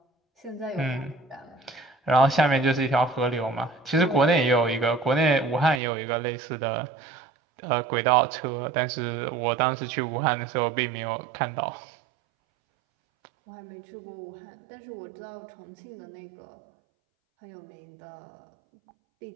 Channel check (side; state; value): left; drops out; at 5.8 s